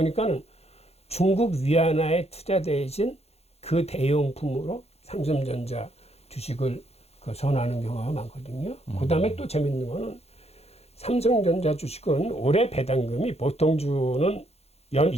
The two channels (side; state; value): right; late; 0.30 ms